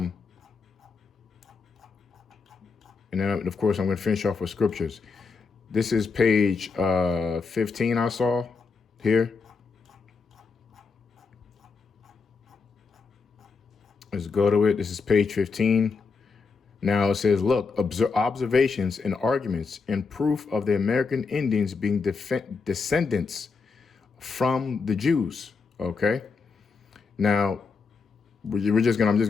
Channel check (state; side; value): quieter; right; 4.8 dB